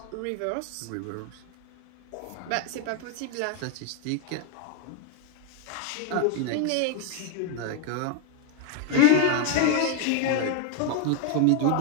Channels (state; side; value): different; both; correlation 0.01